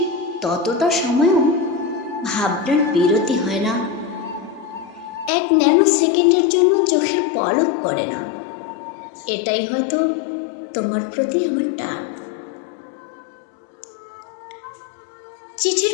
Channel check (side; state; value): right; drops out; at 5.3 s